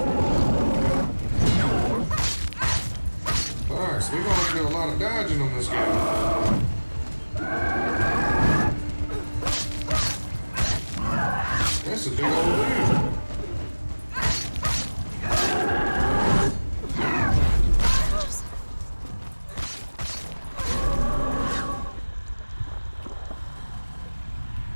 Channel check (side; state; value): both; inverted; correlation -1.00